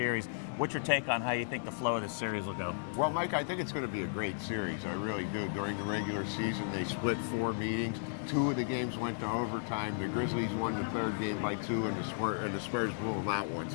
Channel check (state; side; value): silent; right; digital silence